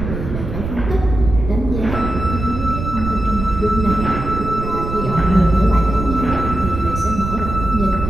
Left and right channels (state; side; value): noise; right; rumble, 6 dB below the sound